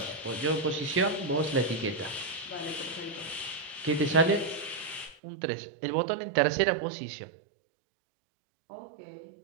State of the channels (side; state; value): left; drops out; at 5.2 s